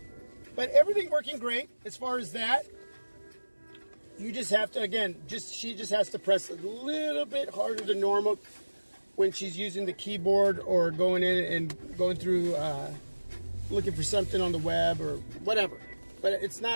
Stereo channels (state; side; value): inverted; both; correlation -1.00